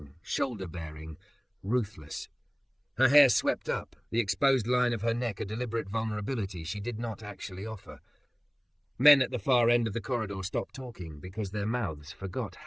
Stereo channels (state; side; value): identical; both; correlation 1.00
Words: shoulder-bearing, ruthless. Her hair swept up, the exposed line of her neck a deliberate vulnerability she did not actually offer. Men at the far end of the corridor stopped talking because their mouths forgot